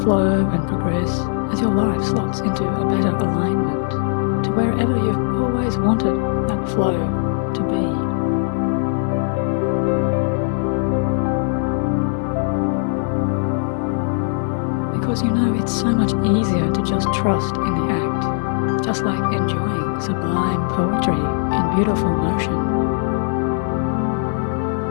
and progress as your life slots into a better alignment to wherever you've always wanted that flow to be. Because you know it's so much easier to just trust in the act, just like enjoying sublime poetry in beautiful motion.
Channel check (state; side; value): silent; right; 59 dB below the other